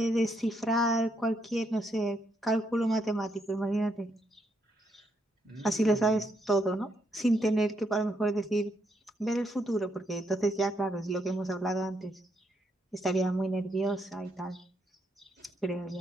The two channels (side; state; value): both; normal; correlation 0.77